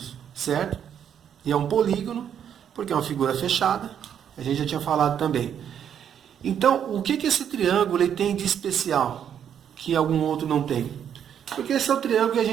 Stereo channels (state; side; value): quieter; left; 8.9 dB